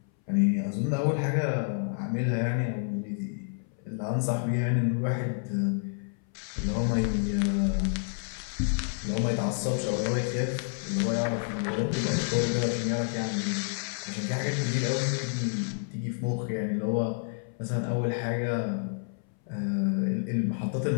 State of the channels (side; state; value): right; silent; 58 dB below the other